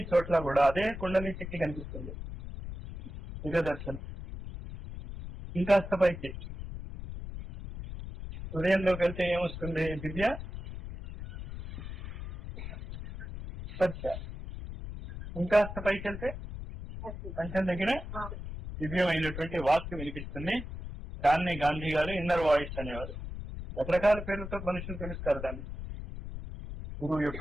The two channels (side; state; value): left; noise; rumble, 9 dB below the sound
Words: చోట్ల కూడా అదే కుండలి శక్తి కనిపిస్తుంది. దివ్య దర్శనం. ఇంకాస్త పైకి హృదయంలోకి వెళ్తే ఏమొస్తుంది? దివ్య స్పర్శ. ఇంకాస్త పైకి వెళ్తే కంఠం దగ్గర దివ్యమైనటువంటి వాక్యం వినిపిస్తుంది. దాన్ని గాంధీ గారు ఇన్నర్ వాయిస్ అనేవారు. రకరకాల పేర్లతో మనుషులు పిలుస్తారు దాన్ని. గురువు